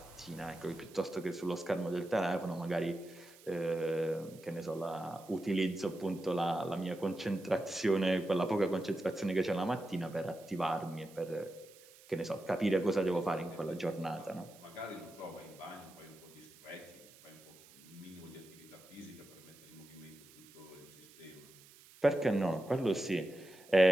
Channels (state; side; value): noise; right; hiss, 23 dB below the sound